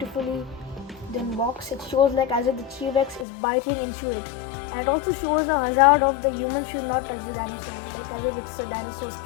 done box. It shows like as if the T-Rex is biting into it. And it also shows the hazard of the human should not touch the dinosaur, like as if it's a dinosaur's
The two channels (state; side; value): drops out; right; at 3.2 s